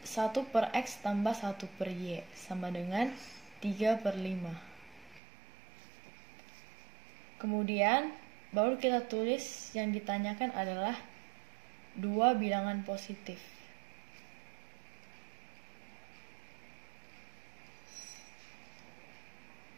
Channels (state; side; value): drops out; left; at 5.2 s